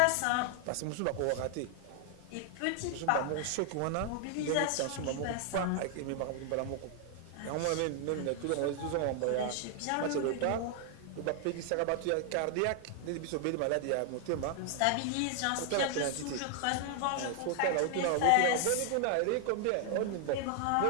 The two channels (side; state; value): both; different; correlation 0.00